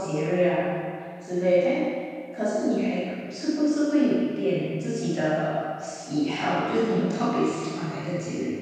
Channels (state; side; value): identical; both; correlation 1.00